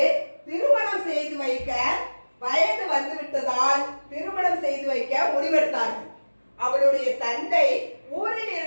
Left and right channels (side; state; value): both; inverted; correlation -1.00